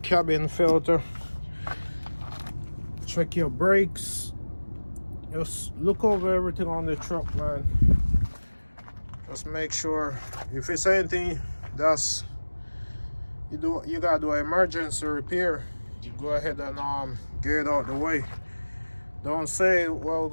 filter. Check your brakes. Just look over everything on the truck, man. Just make sure if it's anything that's you gotta do an emergency repair, you go ahead and get it out the way. Don't say, well, we're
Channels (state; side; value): inverted; both; correlation -1.00